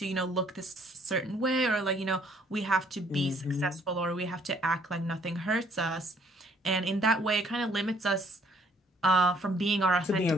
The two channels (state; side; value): normal; both; correlation 0.63